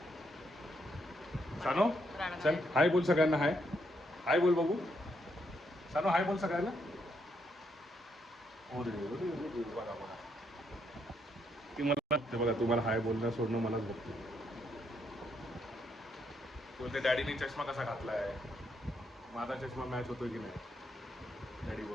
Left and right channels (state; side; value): normal; both; correlation 0.76